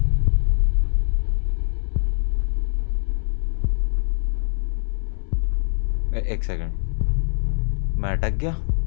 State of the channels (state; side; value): silent; right; 61 dB below the other